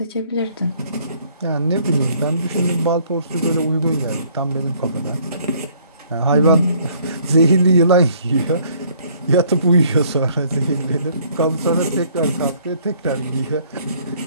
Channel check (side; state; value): both; inverted; correlation -0.61